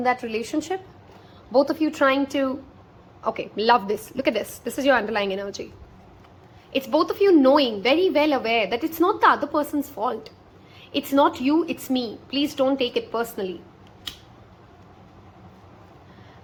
that relationship. Both of you trying to, okay, love this. Look at this. This is your underlying energy. It's both of you knowing, very well aware that it's not the other person's fault. It's not you, it's me. Please don't take it personally.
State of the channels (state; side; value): identical; both; correlation 1.00